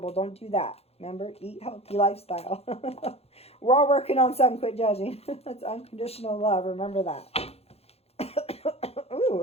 Don't do that. Remember, eat healthy lifestyle. We're all working on something. Quit judging. That's unconditional love. Remember that.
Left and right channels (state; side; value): late; right; 0.29 ms